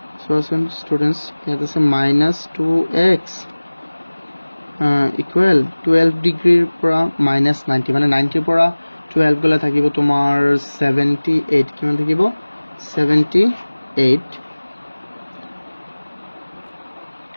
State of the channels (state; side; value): inverted; both; correlation -1.00